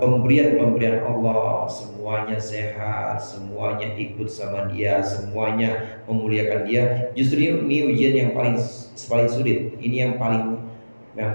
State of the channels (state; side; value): inverted; both; correlation -1.00